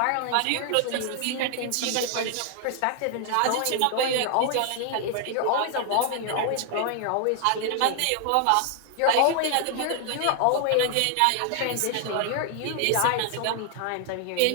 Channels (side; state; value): both; different; correlation 0.00